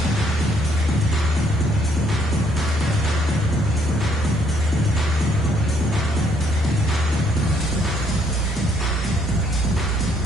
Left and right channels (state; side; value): normal; both; correlation 0.68